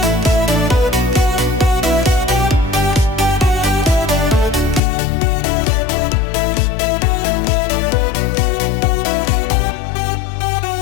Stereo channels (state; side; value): drops out; right; at 4.8 s